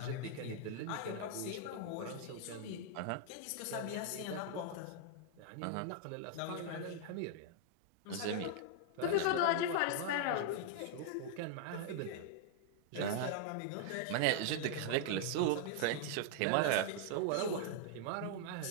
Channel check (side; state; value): both; different; correlation 0.00